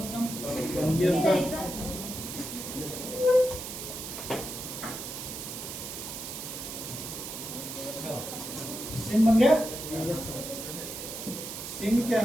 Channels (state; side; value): noise; right; hiss, 7 dB below the sound